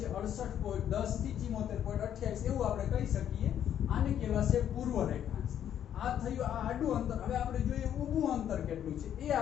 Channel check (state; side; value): quieter; right; 9.9 dB